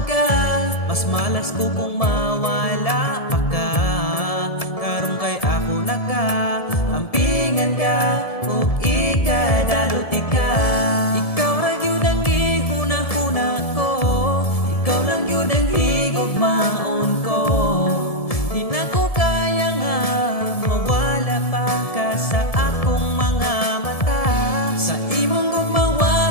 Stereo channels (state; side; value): late; right; 1.7 ms